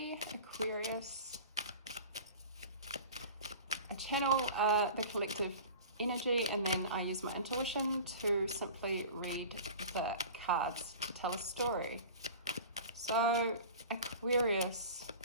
Aquarius. I channel the collective energy, and then I use my intuition to simply read the cards to tell a story. So Aquarius,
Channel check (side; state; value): both; inverted; correlation -0.39